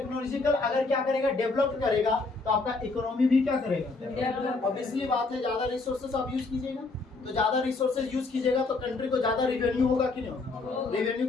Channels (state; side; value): quieter; right; 3.7 dB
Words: अगर क्या करेगा? डेवलप करेगा तो आपका इकोनॉमी भी क्या करेगा? ऑब्वियसली बात है, ज्यादा रिसोर्सेज आप यूज कीजिएगा तो ज्यादा रिसोर्सेज यूज कीजिएगा तो कंट्री को ज्यादा रेवेन्यू होगा कि नहीं होगा? रेवेन्यू